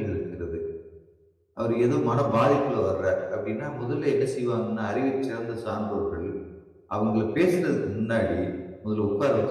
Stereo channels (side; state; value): both; identical; correlation 1.00